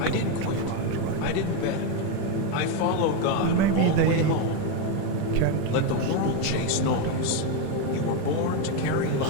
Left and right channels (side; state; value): both; different; correlation 0.03